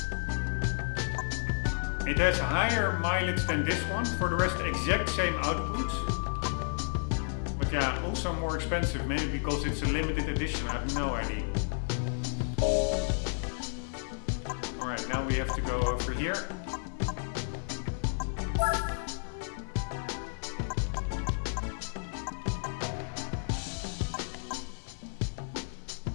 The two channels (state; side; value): silent; right; digital silence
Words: It has higher mileage than this one, for the rest exact same output. But yeah, also more expensive, maybe because it's a limited edition, I have no idea. Alright, now we have to go over here.